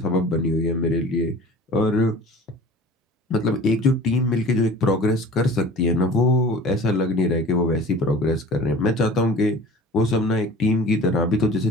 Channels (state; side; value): normal; both; correlation 0.42